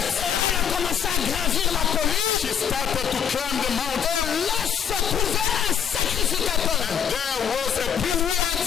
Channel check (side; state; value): right; quieter; 8.2 dB